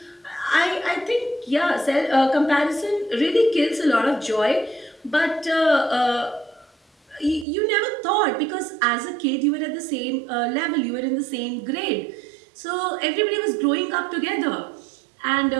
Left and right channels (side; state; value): left; drops out; at 7.5 s